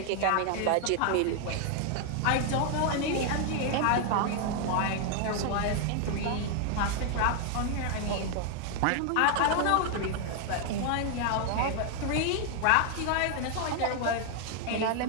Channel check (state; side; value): different; both; correlation 0.00